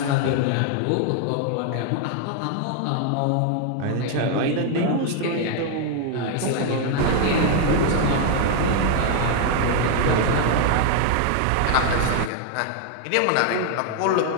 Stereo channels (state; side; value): different; both; correlation 0.00